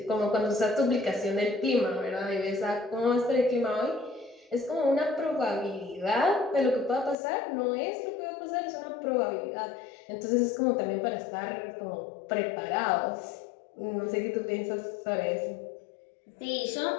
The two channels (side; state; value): right; drops out; at 7.2 s